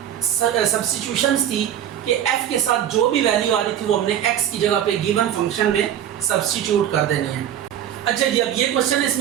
सब्स्टिट्यूशंस थी कि f के साथ जो भी वैल्यू आ रही थी वो हमने x की जगह पे गिवन फंक्शन में सब्स्टिट्यूट कर देनी है। अच्छा जी, अब ये क्वेश्चन है,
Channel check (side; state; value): left; quieter; 10.3 dB